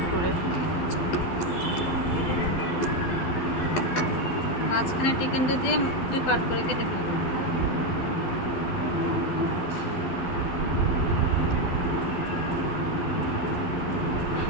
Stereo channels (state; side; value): late; right; 12 ms